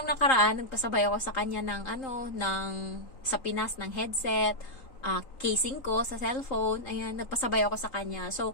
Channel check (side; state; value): right; late; 3.8 ms